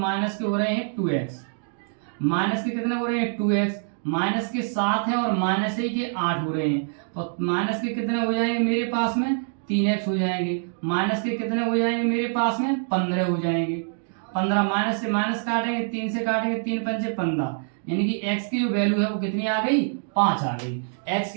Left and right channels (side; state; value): left; silent; 62 dB below the other